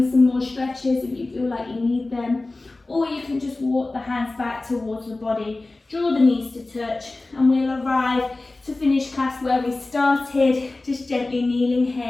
some more stretches if you feel like you need them. Or you can just walk the hands back towards the body, draw the knees to touch, and we'll arrive to finish class where we started, just gently kneeling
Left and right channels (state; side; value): quieter; right; 3.1 dB